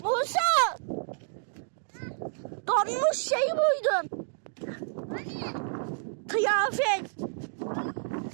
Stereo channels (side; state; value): left; silent; digital silence